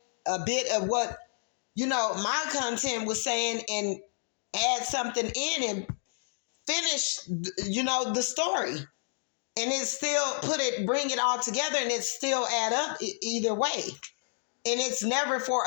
a bit of what, my content was saying and add something in and finish, the story. And it's still bring it all together, and it still add up either way. And it's never for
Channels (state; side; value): silent; right; digital silence